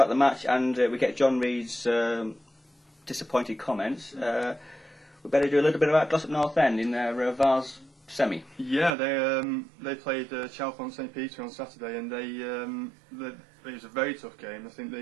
the match and we get John Reed's disappointed comments, we better do a little bit about Ossett North End in their Vars semi. Yeah, they played Chalfont St Peter on Saturday, and it was a very tough game. I think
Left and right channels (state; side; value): drops out; left; at 8.9 s